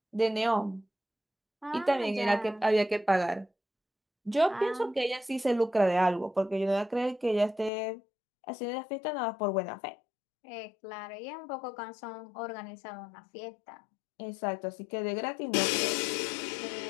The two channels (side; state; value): right; drops out; at 7.7 s